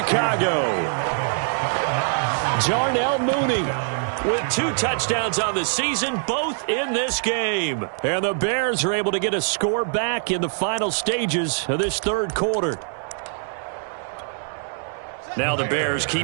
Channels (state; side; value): silent; left; digital silence